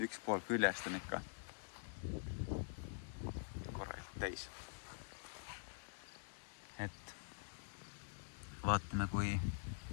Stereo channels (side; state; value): right; silent; digital silence